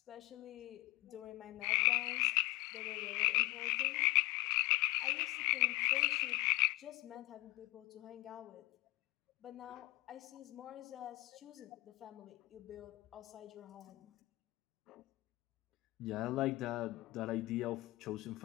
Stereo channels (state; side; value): quieter; right; 21.8 dB